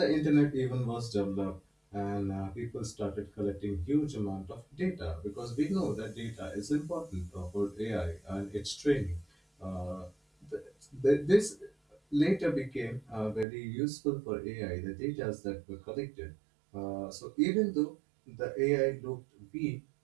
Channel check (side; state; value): left; drops out; at 13.5 s